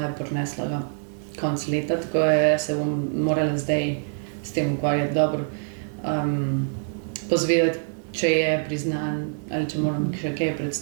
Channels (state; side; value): silent; left; 62 dB below the other